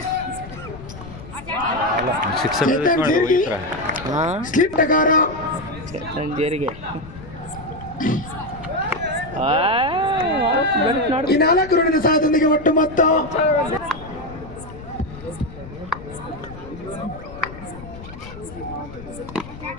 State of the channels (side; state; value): left; noise; rumble, 15 dB below the sound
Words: ಸ್ಲಿಪ್ ಟಗಾರ ಜೇರಿಗೆ ಈ 4 ರೂಢಿನ ಸಹಾಯದೊಂದಿಗೆ ಒಟ್ಟು ಮೊತ್ತ